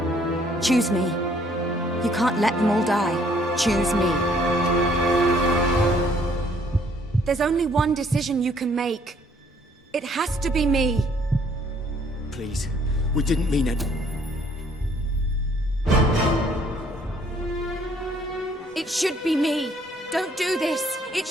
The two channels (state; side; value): normal; both; correlation 0.63